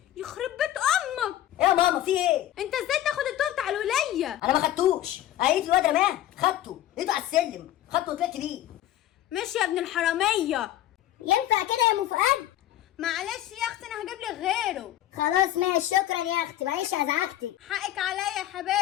يخرب بيت امك. ايه يا ماما في ايه؟ انت ازاي تاخد الطوب بتاع الولية؟ انا ما خدتوش، قالت لي الواد رماه، خدته، لقيته على السلم، خدته وطلعت بيه. ماشي يا ابن الحرامية. ينفع كده يا ام فؤاد؟ معلش يا اختي انا هجيب لك غيره. خلاص ماشي، شكرا يا اختي، معلش ازعجتك. حقك عليا يا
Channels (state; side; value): quieter; right; 13.1 dB